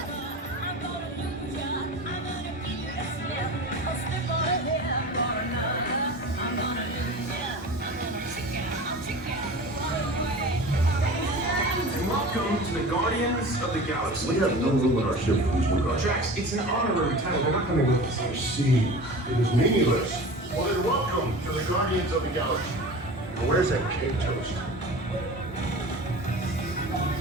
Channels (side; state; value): both; normal; correlation 0.35